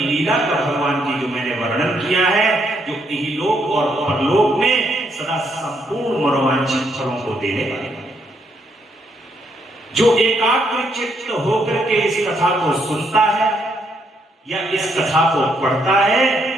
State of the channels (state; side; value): normal; both; correlation 0.74